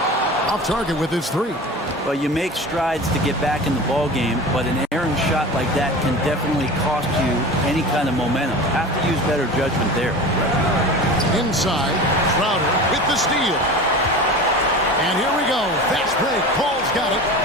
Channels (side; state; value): both; normal; correlation 0.34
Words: Off target with his 3. Well, you make strides to get back in the ball game, but an errant shot like that can definitely cost you any kind of momentum. Have to use better judgment there. Inside, Crowder with the steal. And here we go. Fast break. Paul's got it.